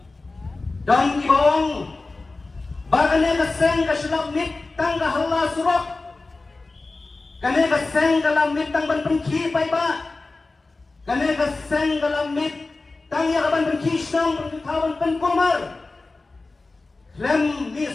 Don ibong bagane kaseng kasylamit tang kahala surok. Kane kaseng kalamit tang ban pengki pay ba. Kane kaseng kalamit tang ya ban pengki snong pengkawan pengkumar. Lem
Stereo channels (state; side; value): quieter; right; 3.5 dB